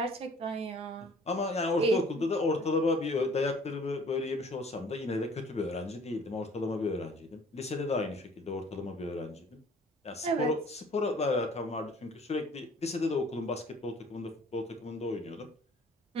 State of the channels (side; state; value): both; normal; correlation 0.53